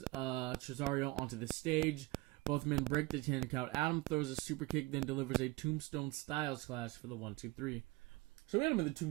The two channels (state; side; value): quieter; left; 22.1 dB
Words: Tresario onto the stage. Both men break the 10 count. Adam throws a super kick, then delivers a tombstone Styles Clash for the 1-2-3. So we had him in the